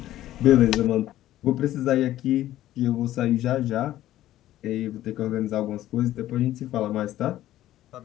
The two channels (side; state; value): right; quieter; 13.9 dB